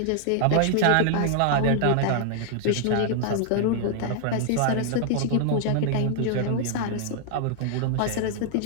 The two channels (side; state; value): both; different; correlation 0.00